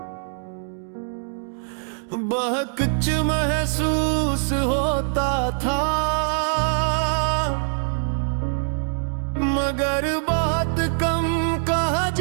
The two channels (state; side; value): silent; left; digital silence